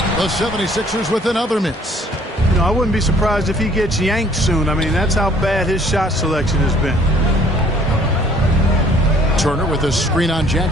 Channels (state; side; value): normal; both; correlation 0.59